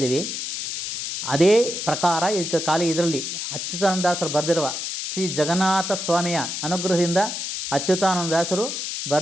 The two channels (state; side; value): noise; left; hiss, 5 dB below the sound